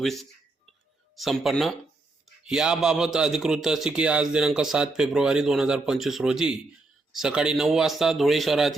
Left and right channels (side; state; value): left; quieter; 3.2 dB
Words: संपन्न। याबाबत अधिकृत अशी की आज दिनांक 7 फेब्रुवारी 2025 रोजी सकाळी 9 वाजता धुळे